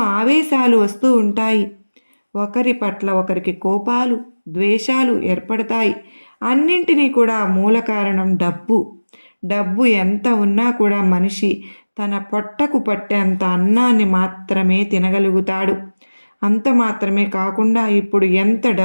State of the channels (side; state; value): both; inverted; correlation -1.00